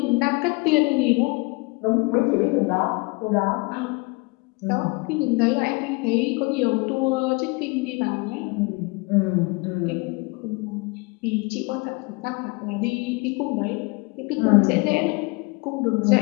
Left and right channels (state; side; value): quieter; right; 27.4 dB